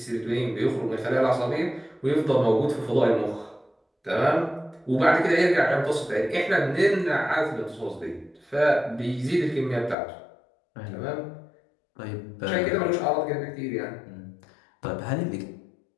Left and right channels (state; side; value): drops out; right; at 10.0 s